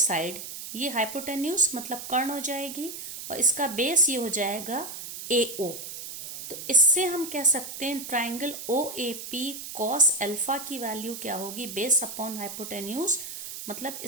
ये हाइपोटेन्यूज मतलब कर्ण हो जाएगी, और इसका बेस ये हो जाएगा AO। तो इससे हम कह सकते हैं ट्राइंगल OAP cos अल्फा की वैल्यू क्या होगी, बेस अपॉन हाइपोटेन्यूज, मतलब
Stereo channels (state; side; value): noise; right; hiss, 9 dB below the sound